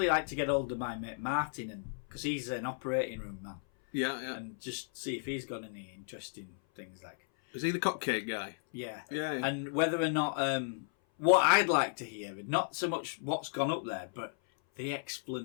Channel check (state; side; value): silent; right; 55 dB below the other